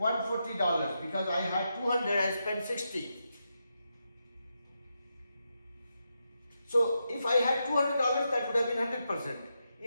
because I had 200, I spent 60. So if I had $200, that would have been 100%.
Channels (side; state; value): both; inverted; correlation -0.85